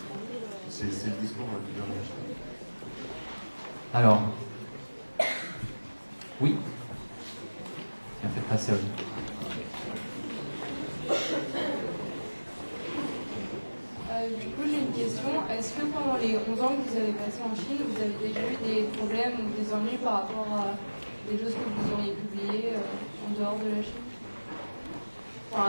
C'est le discours du gouvernement chinois. Alors, oui, tiens, faites passer à vous. Du coup, j'ai une question. Est-ce que pendant les 11 ans que vous avez passé en Chine, vous avez déjà eu des problèmes ou des ennuis par rapport à des choses que vous auriez publiées en dehors de la Chine? Enfin,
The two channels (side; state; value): both; inverted; correlation -1.00